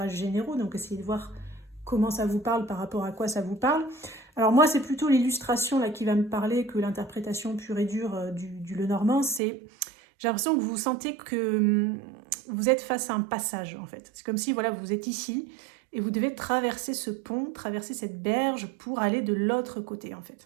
généraux, donc essayez de voir comment ça vous parle par rapport à quoi ça vous parle. Alors moi, c'est plutôt l'illustration là qui va me parler que l'interprétation pure et dure du Lenormand. J'ai l'impression que vous sentez que vous êtes face à un passage en fait. C'est comme si voilà, vous êtes ici et vous devez traverser ce pont, traverser cette berge pour aller de l'autre côté en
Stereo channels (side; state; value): left; drops out; at 9.4 s